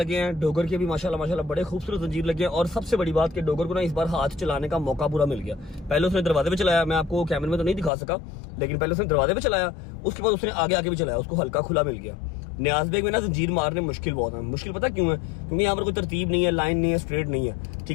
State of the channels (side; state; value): right; drops out; at 7.9 s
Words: ہیں, ڈوگر کے بھی ماشاءاللہ بڑے خوبصورت زنجیر لگے ہیں. اور سب سے بڑی بات کہ ڈوگر کو نا اس بار ہاتھ چلانے کا موقع پورا مل گیا. پہلے اس نے دروازے پہ چلایا, میں آپ کو کیمرے میں تو نہیں دکھا سکا, لیکن پہلے اس نے دروازے پہ چلایا, اس کے بعد اس نے آگے بھی چلایا, اس کو ہلکا کھلا مل گیا. نیاز بیگ میں نا زنجیر مارنے مشکل بہت ہے. مشکل پتہ کیوں ہے؟ کیونکہ یہاں پر کوئی ترتیب نہیں ہے, لائن نہیں ہے, اسٹریٹ نہیں ہے,